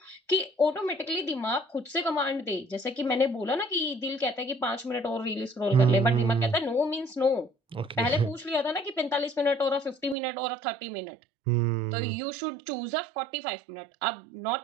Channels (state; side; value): drops out; left; at 10.2 s